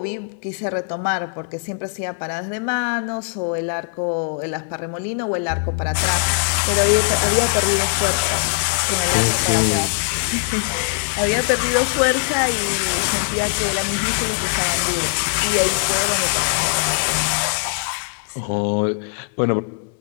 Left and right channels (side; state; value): right; silent; digital silence